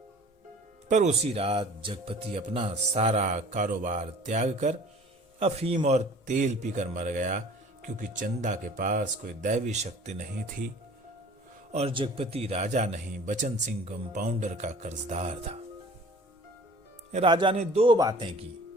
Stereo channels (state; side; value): normal; both; correlation 0.47